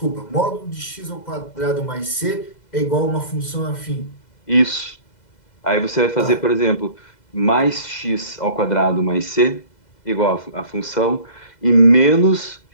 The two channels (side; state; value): right; late; 2.0 ms